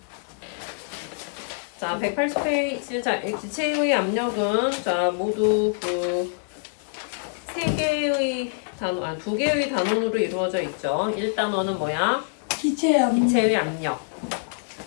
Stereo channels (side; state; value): right; silent; 62 dB below the other